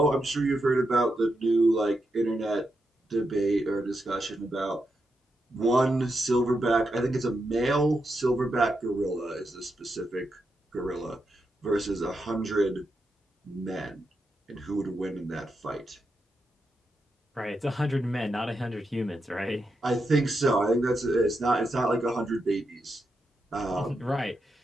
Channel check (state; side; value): normal; both; correlation 0.85